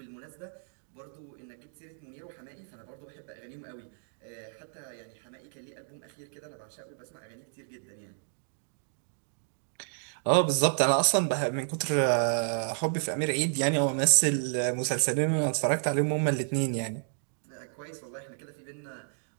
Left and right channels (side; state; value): left; silent; digital silence